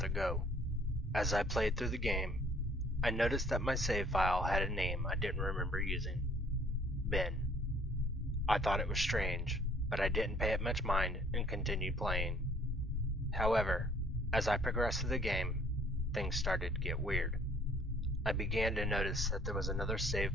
go. As I played through the game, I noticed that my save file had a name I didn't remember using: Ben. I thought it was strange, but I didn't pay it much mind and continued playing. However, as I progressed through the game, things started to get weird. I began to notice that there was another save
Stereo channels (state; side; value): normal; both; correlation 0.58